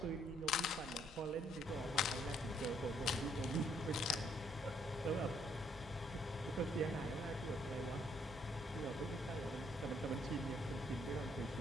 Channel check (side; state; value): both; normal; correlation 0.68